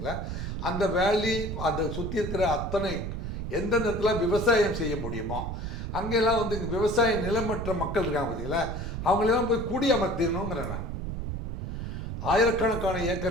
அந்த வேலி அந்த சுற்றி இருக்கிற அத்தனை எந்த நேரத்தில் விவசாயம் செய்ய முடியுமோ அங்கெல்லாம் வந்து இங்கே விவசாய நிலமற்ற மக்கள் இருக்காங்க பார்த்தீங்களா, அவங்களெல்லாம் போய் குடியமர்த்திடணுங்கிறேன் நான். ஆயிரக்கணக்கான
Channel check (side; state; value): right; noise; rumble, 5 dB below the sound